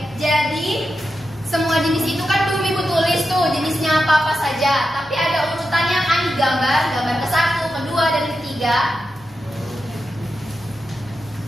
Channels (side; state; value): both; normal; correlation 0.89